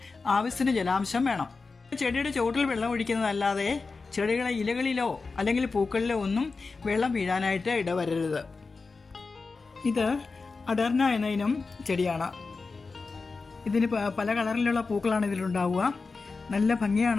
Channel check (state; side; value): quieter; right; 4.2 dB